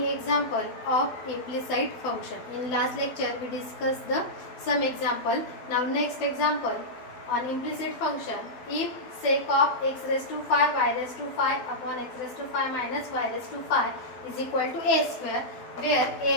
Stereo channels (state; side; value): late; right; 12 ms